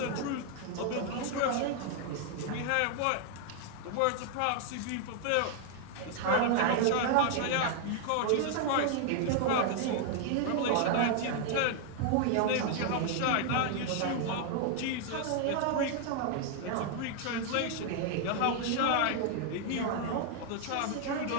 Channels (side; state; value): both; different; correlation 0.00